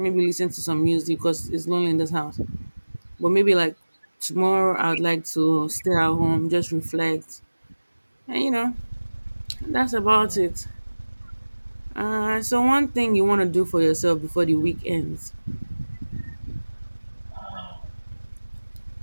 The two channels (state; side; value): inverted; both; correlation -1.00